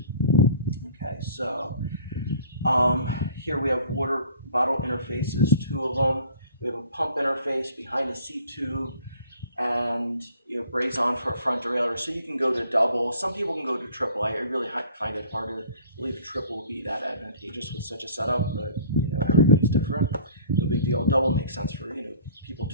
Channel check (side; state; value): both; inverted; correlation -0.50